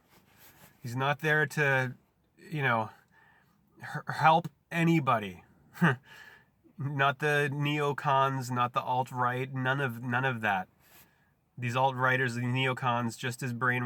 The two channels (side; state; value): both; identical; correlation 1.00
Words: He's not there to, help anybody. Not the neocons, not the alt-right, none of that. These alt-righters, the neocons, just as